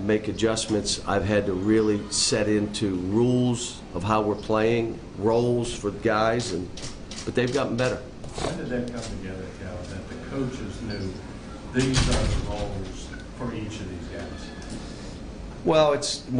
make adjustments. I've had to really set into rules of how we're playing, roles for guys, but they've gotten better. When did that come together, Cal, that the coaches knew these are the roles for each of these guys? Well, it's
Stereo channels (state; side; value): identical; both; correlation 1.00